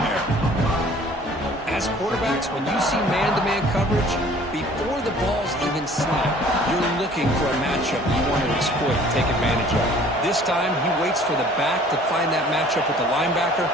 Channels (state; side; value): normal; both; correlation 0.52